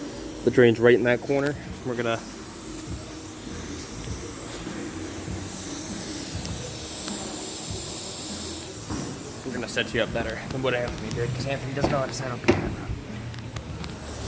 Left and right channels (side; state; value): both; identical; correlation 1.00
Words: The drain's right in that corner. We're gonna set you up better than what Anthony did, because Anthony doesn't know how to set up a camera.